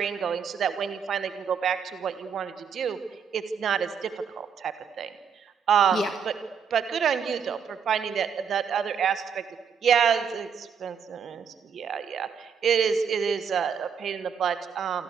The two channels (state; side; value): quieter; left; 6.9 dB